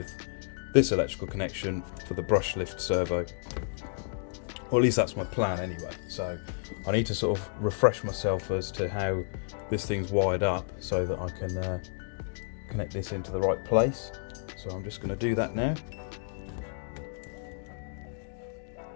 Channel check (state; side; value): silent; right; digital silence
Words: this electrical connection for the brush lift servo. Or at least that's my plan anyway. So I need to sort of refresh myself as to how this thing's wired up so that I can connect this into the right place. So I'm just going to do that now.